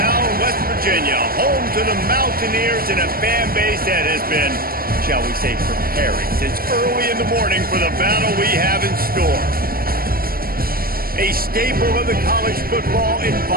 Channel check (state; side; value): late; left; 0.43 ms